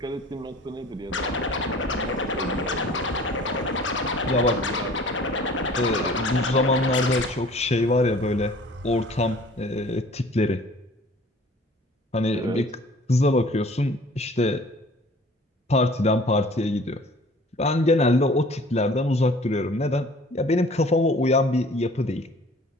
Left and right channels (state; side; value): normal; both; correlation 0.49